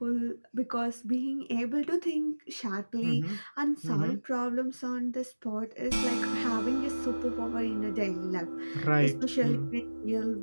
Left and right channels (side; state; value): both; inverted; correlation -1.00